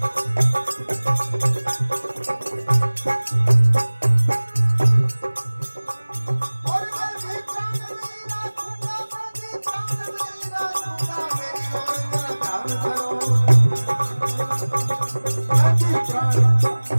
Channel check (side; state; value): both; inverted; correlation -1.00